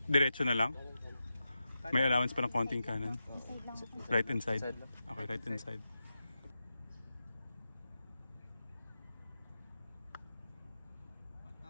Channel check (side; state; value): both; inverted; correlation -0.90